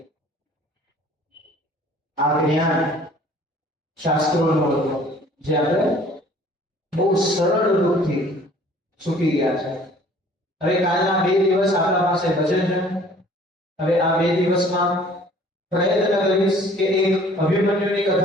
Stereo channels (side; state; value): both; normal; correlation 0.53